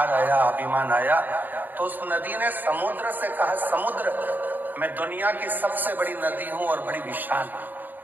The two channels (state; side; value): late; left; 0.087 ms